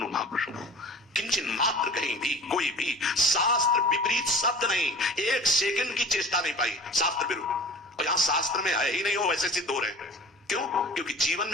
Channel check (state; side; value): normal; both; correlation 0.41